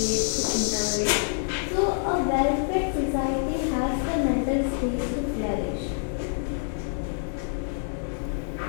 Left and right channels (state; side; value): silent; right; digital silence